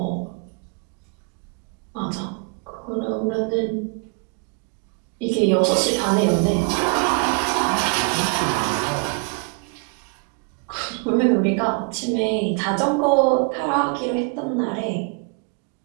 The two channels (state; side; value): quieter; left; 33.8 dB